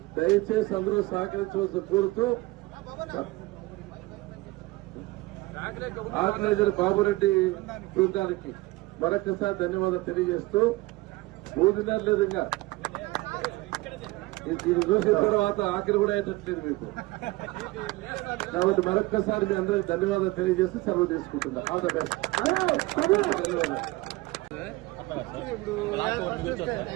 దయచేసి అందరూ సహకరించవలసి కోరుతూ ఆర్గనైజర్ బాబురెడ్డి బృందానికి మరొకసారి ధన్యవాదాలు తెలియజేస్తూ మూడున్నర లేదు ఇంకా ఇది చూసిన తర్వాత ఆఖరి కూడా అయ్యేటట్లేదు మీకు. కాబట్టి మరొక్కసారి మీ అందరికి ధన్యవాదాలు తెలియజేస్తూ సెలవు తీసుకుంటున్నా. All the best.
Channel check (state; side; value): quieter; left; 20.9 dB